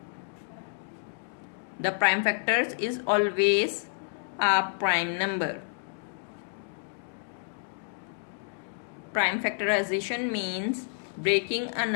The prime factors is always a prime number. Prime factorization means breaking a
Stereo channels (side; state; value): right; silent; digital silence